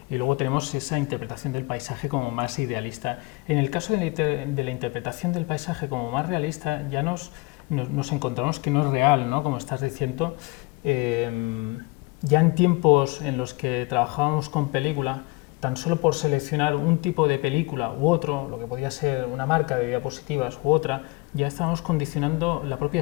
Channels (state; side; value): quieter; right; 24.9 dB